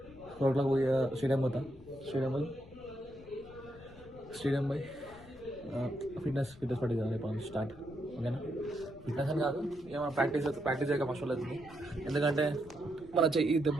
పోయి స్టేడియం పోతా. స్టేడియం పోయి ఫిట్నెస్ పట్టింది కదా రేపు స్టార్ట్. ఓకేనా? ఫిట్నెస్ అని కాదు, ఏమైనా ప్రాక్టీస్ చేయక మస్తు అవుతుంది. ఎందుకంటే మన చెయ్యి దెబ్బ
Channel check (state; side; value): noise; left; rumble, 21 dB below the sound